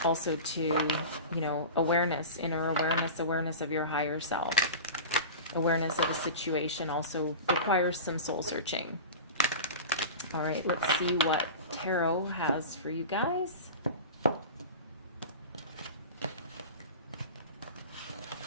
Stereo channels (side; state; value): both; inverted; correlation -0.31